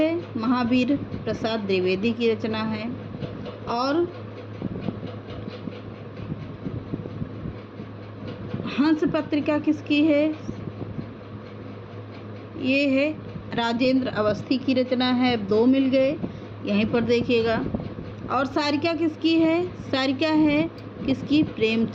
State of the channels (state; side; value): identical; both; correlation 1.00